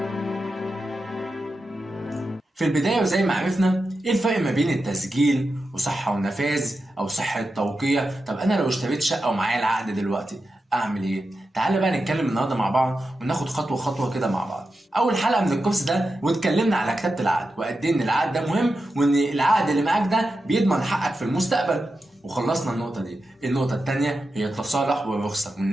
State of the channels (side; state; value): both; normal; correlation 0.90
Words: في البداية وزي ما عرفنا ايه الفرق ما بين التسجيل وصحة ونفاذ او صحة توقيع. طب انا لو اشتريت شقة ومعايا العقد دلوقتي اعمل ايه؟ تعالى بقى نتكلم النهارده مع بعض وناخد خطوة خطوة كده مع بعض. اول حلقة من الكورس ده واتكلمنا على كتابة العقد وقد ايه ان العقد ده مهم، وان العقد اللي معاك ده بيضمن حقك في المستقبل، وخلصنا النقطة دي. النقطة التانية هي التصالح والرخصة،